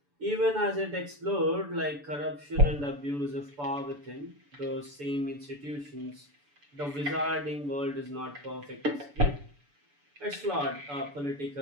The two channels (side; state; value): left; late; 6.9 ms